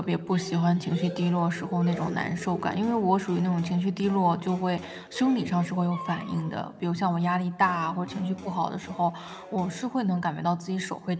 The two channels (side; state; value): both; identical; correlation 1.00